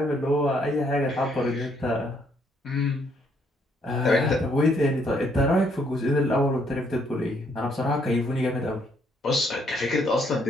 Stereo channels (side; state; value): both; normal; correlation 0.70